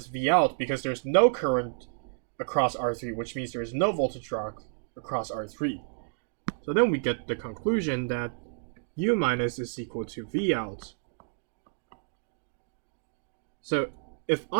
Vout, because there's no current across R3, which means there's no voltage drop across R3. So then we get the conclusion that U minus is equal to Vout. So if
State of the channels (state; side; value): silent; left; digital silence